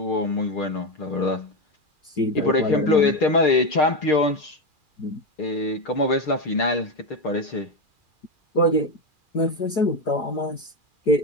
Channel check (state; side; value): late; right; 2.4 ms